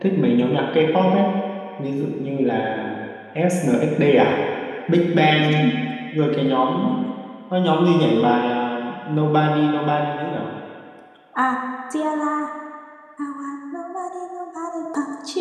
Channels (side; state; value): both; identical; correlation 1.00